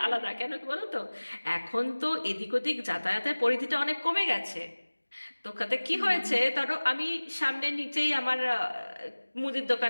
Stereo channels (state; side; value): inverted; both; correlation -1.00